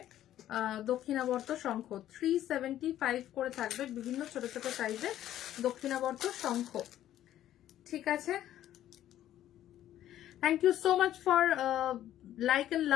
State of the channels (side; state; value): right; quieter; 12.3 dB